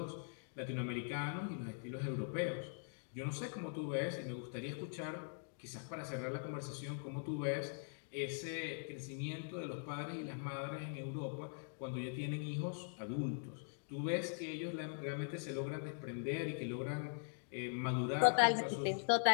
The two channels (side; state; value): right; silent; digital silence